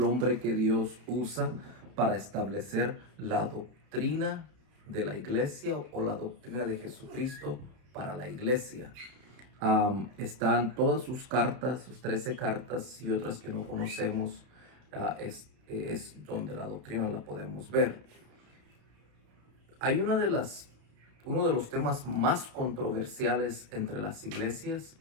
hombre que Dios usa para establecer la doctrina de la iglesia o la doctrina de Jesucristo para la iglesia. Están todas sus cartas, sus 13 cartas y otras que no conocemos, es donde la doctrina la podemos ver. Hay uno de los temas más controversiales entre las iglesias,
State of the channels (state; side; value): late; left; 31 ms